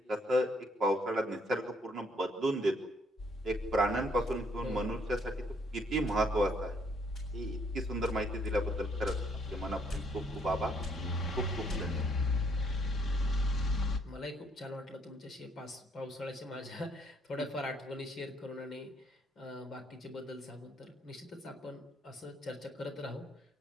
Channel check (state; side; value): normal; both; correlation 0.68